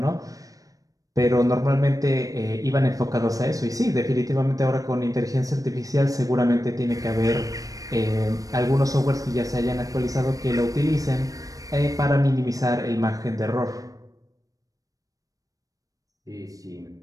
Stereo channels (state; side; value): late; left; 0.17 ms